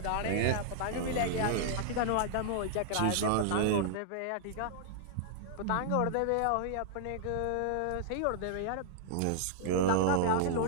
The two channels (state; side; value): different; both; correlation -0.01